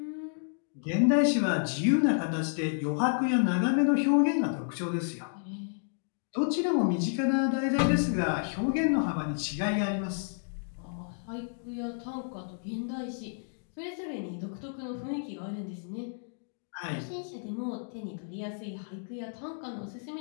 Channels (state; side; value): silent; right; digital silence